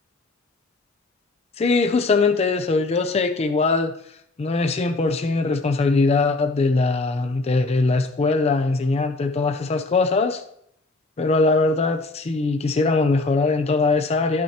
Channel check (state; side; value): quieter; right; 3.2 dB